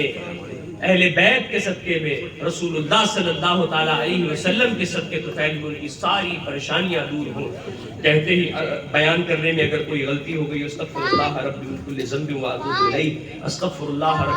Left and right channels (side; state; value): both; identical; correlation 1.00